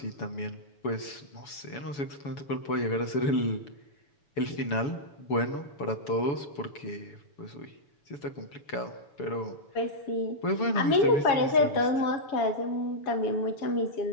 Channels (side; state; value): right; late; 7.0 ms